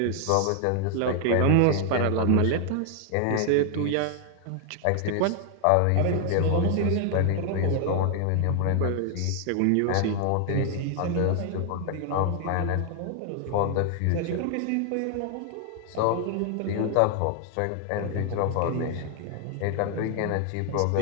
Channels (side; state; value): both; different; correlation 0.00